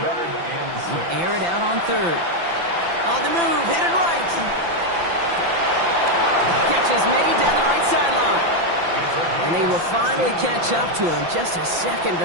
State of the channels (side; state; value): left; late; 5.9 ms